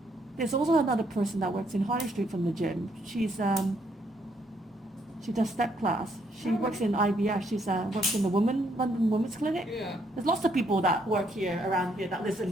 also another person that works in Harley Street from the gym. She does step class. She works in IVF. She works in the London Women's Clinic. Yeah. There's lots of people that work here around here that live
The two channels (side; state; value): both; normal; correlation 0.71